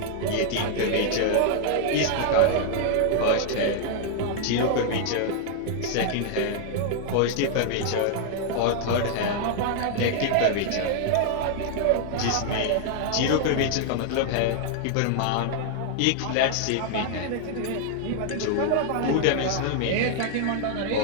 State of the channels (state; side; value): different; both; correlation 0.00